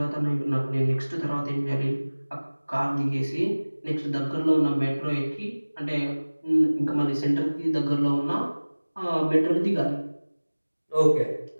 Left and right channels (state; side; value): inverted; both; correlation -1.00